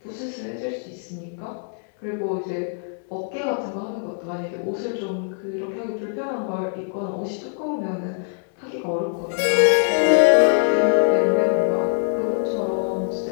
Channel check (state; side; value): silent; right; 63 dB below the other